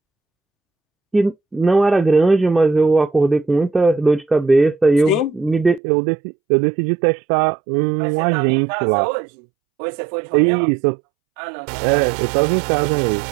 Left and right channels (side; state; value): left; drops out; at 5.8 s